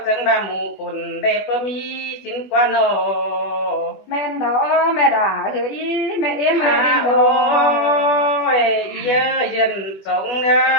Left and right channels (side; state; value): right; late; 20 ms